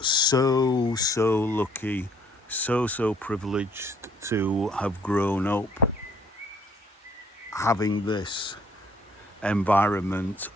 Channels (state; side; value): normal; both; correlation 0.62